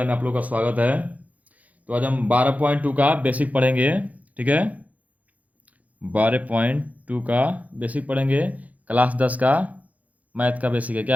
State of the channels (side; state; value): left; late; 0.074 ms